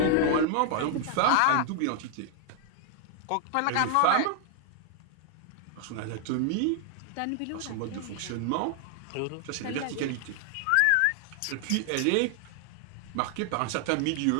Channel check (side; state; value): both; different; correlation 0.00